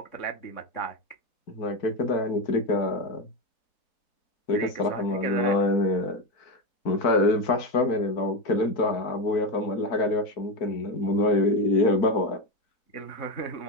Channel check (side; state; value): right; late; 4.5 ms